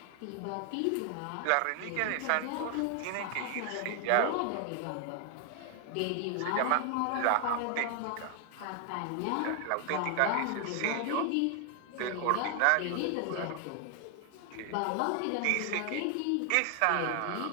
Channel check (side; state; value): both; different; correlation 0.00